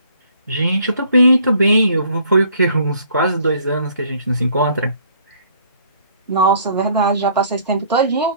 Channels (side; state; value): both; inverted; correlation -0.59